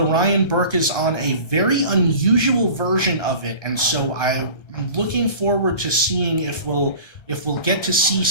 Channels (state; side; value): late; right; 1.2 ms